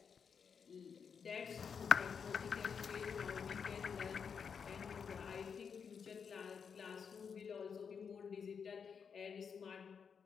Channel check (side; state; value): right; quieter; 6.5 dB